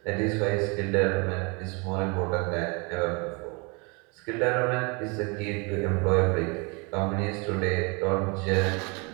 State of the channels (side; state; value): left; quieter; 30.8 dB